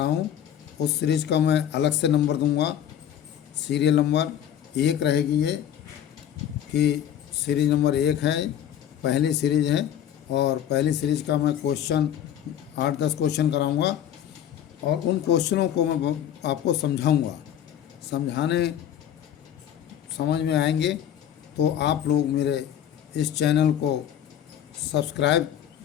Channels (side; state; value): right; quieter; 10.1 dB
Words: हूं। उस सीरीज का मैं अलग से नंबर दूंगा। सीरियल नंबर 1 रहेगी ये, कि सीरीज नंबर 1 है, पहली सीरीज है। और पहली सीरीज का मैं क्वेश्चन 8-10 क्वेश्चन कराऊंगा और उन क्वेश्चनों को मैं आपको समझाऊंगा। समझ में आएंगे तो आप लोग मेरे इस चैनल को सब्सक्राइब